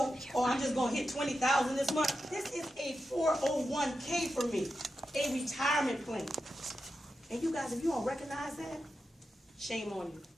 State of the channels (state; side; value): normal; both; correlation 0.89